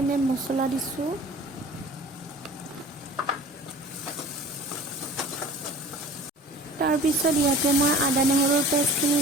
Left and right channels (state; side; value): normal; both; correlation 0.43